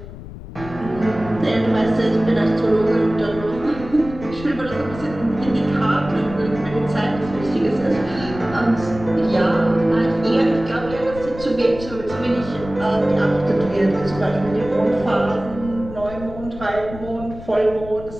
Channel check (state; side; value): noise; left; rumble, 13 dB below the sound